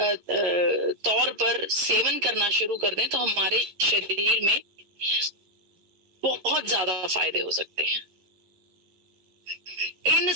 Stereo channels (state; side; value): late; left; 11 ms